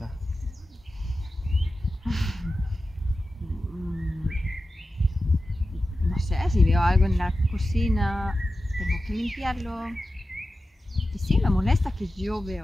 No sé, si veo algo en la cocina, tengo que limpiarlo. Y sí, me molesta que yo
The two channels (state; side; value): normal; both; correlation 0.93